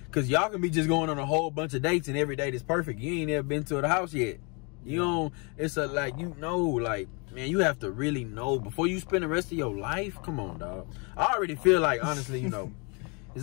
Because y'all can be just going on a whole bunch of dates and every date is perfect. You ain't ever been to the house yet. You don't, it's a, like, you know, like, man, you have to really know before you spend the rest of your life. Come on, dog. I already feel like, honestly, you know,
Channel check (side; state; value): right; quieter; 32.8 dB